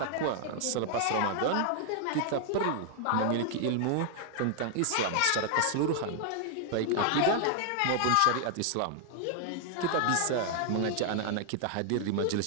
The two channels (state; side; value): different; both; correlation 0.00